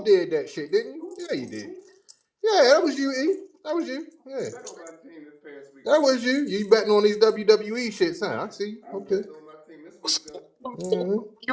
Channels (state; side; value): identical; both; correlation 1.00